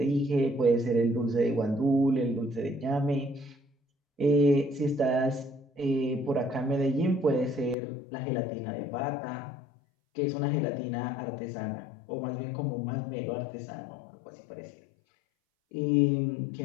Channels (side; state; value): right; drops out; at 7.8 s